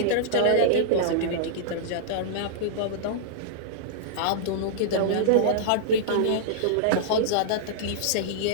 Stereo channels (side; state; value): both; different; correlation -0.02